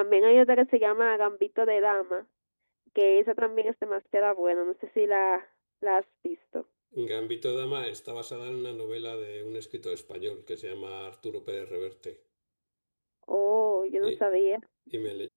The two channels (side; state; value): both; inverted; correlation -1.00